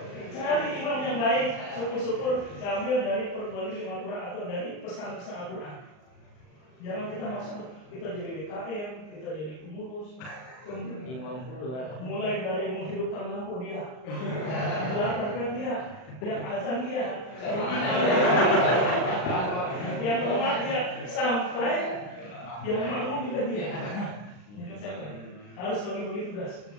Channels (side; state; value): right; late; 39 ms